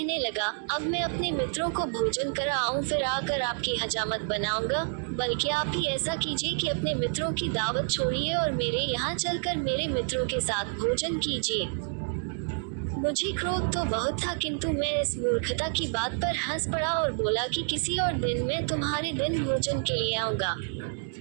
लगा, अब मैं अपने मित्रों को भोजन कराऊं, फिर आकर आपकी हजामत बनाऊंगा। बल्कि आप ही ऐसा कीजिए कि अपने मित्रों की दावत छोड़िए और मेरे यहाँ चलकर मेरे मित्रों के साथ भोजन कीजिए। मुझे क्रोध तो बहुत था, किंतु मैं इस मूर्खता की बात पर हंस पड़ा और बोला कि किसी और दिन मैं तुम्हारे दिन भोजन के लिए आऊंगा।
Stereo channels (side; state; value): left; silent; digital silence